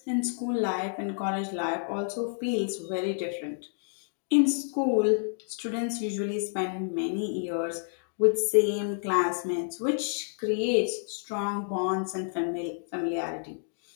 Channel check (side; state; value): right; silent; digital silence